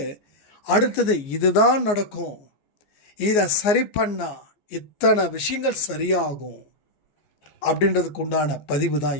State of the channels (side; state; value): right; late; 14 ms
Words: அடுத்தது இதுதான் நடக்கும், இதை சரி பண்ணால் இத்தனை விஷயங்கள் சரியாகும் அப்படின்றதுக்கு உண்டான பதிவு தான்